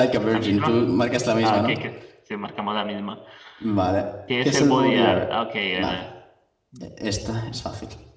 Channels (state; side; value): identical; both; correlation 1.00